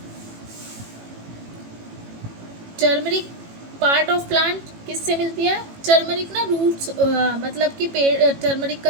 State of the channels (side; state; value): left; late; 18 ms